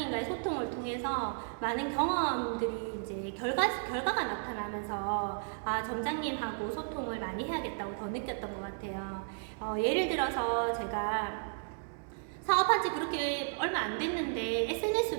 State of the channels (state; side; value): silent; left; digital silence